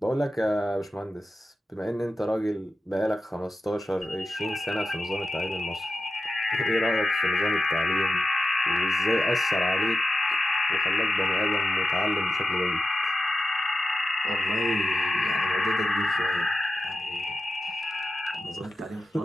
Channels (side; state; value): both; normal; correlation 0.90